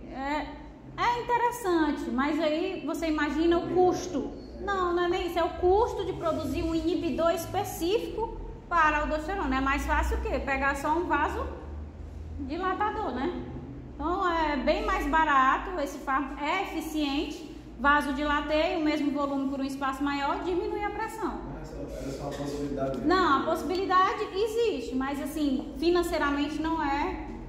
é interessante, mas aí você imagina o custo. Não, não é nem isso, é o custo de produzir um inibidor específico para a aldosterona. É mais fácil o quê? Pegar só um vasodilatador, né? Então é bem mais barato, esse fármaco é eficiente, vasodilateia o mesmo volume por um espaço maior, diminui a pressão. Era só uma possibilidade. Não, a possibilidade existe, mas assim, financeiramente não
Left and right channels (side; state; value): both; identical; correlation 1.00